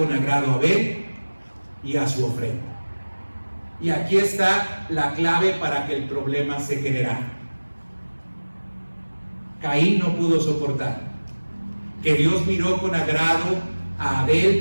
agrado a Abel y a su ofrenda. Y aquí está la clave para que el problema se generara. Caín no pudo soportar que Dios miró con agrado a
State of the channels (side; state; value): both; inverted; correlation -1.00